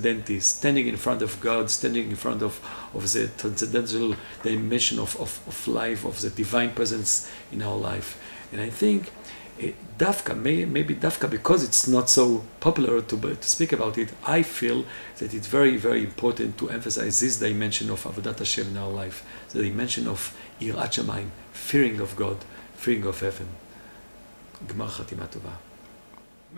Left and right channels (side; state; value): both; inverted; correlation -1.00